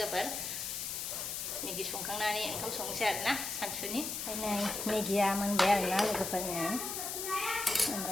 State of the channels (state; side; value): noise; left; hiss, 4 dB below the sound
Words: मेगि संखांनानै ओंखाम संनोसै आरोना सानसुनि ओमफ्राय नै मेगिया मोनबाय आरोना लोगोफोरनो